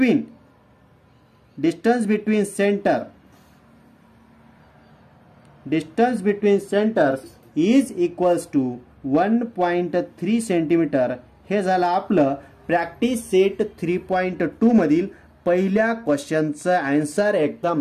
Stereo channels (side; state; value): both; identical; correlation 1.00